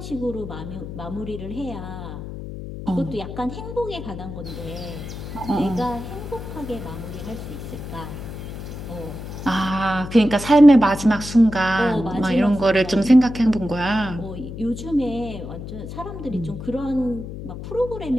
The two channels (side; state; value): left; noise; hum, 9 dB below the sound